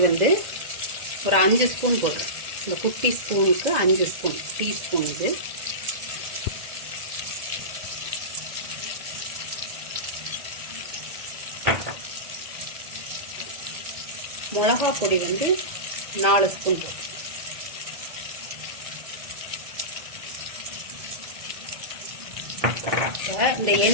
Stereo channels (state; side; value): late; left; 1.7 ms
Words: ஒரு 5 ஸ்பூன் போடுறேன். இந்த குட்டி ஸ்பூனுக்கு 5 ஸ்பூன், டீஸ்பூன் இது. மிளகா பொடி 4 ஸ்பூன் போட்டு. இந்த